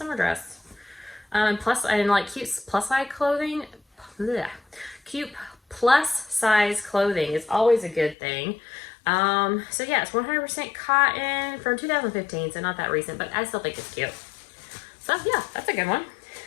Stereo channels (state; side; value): drops out; right; at 8.2 s